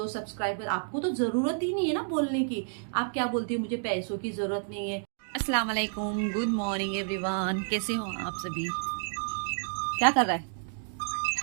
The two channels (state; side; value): silent; left; digital silence